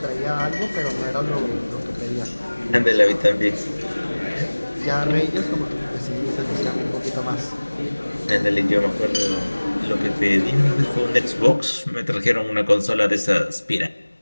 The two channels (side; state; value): both; inverted; correlation -1.00